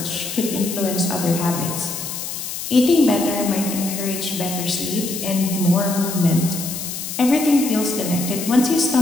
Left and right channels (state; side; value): noise; left; hiss, 6 dB below the sound